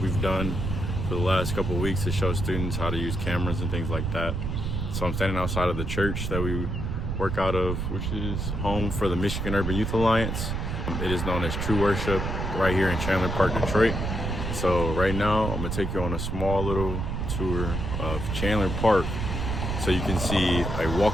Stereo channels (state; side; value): noise; right; rumble, 2 dB below the sound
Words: done for the last couple of weeks to show students how to use cameras and things like that. So I'm standing outside of the church that we work out of, which is home for the Michigan Urban Youth Alliance. It is known as True Worship right here in Chandler Park, Detroit. So right now I'm going to take you on a small little tour of Chandler Park so you can see a